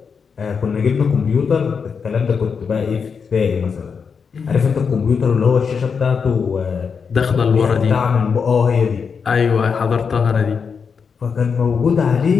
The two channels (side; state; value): right; quieter; 6.0 dB